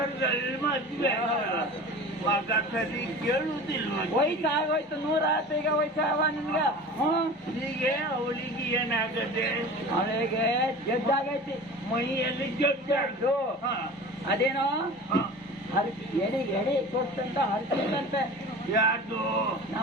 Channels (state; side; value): normal; both; correlation 0.37